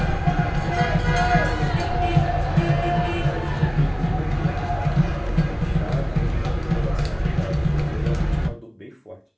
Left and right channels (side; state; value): both; identical; correlation 1.00